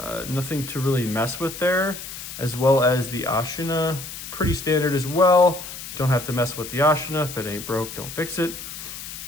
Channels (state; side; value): noise; left; hiss, 10 dB below the sound